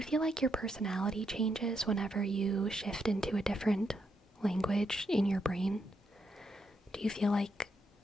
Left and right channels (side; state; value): both; normal; correlation 0.80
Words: feel like your personality changes whenever you shift into a different language in your brain? Do you feel like